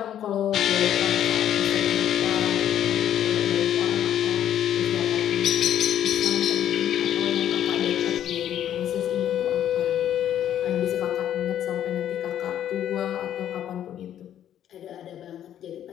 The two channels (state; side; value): quieter; right; 10.7 dB